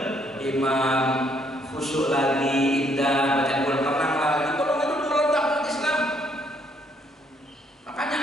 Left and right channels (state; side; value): normal; both; correlation 0.69